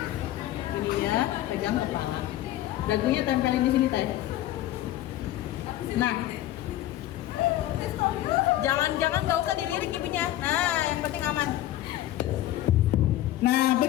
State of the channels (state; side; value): quieter; right; 14.1 dB